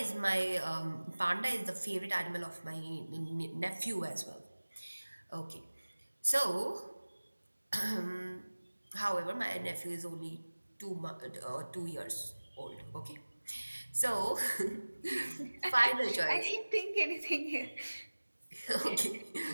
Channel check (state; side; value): inverted; both; correlation -1.00